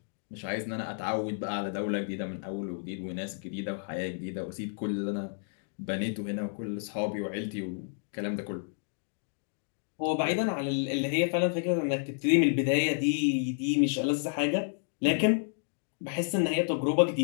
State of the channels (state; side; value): silent; right; digital silence